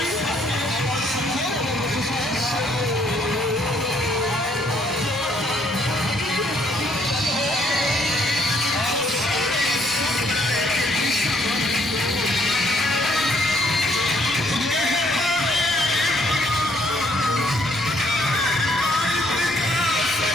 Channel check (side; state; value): both; normal; correlation 0.67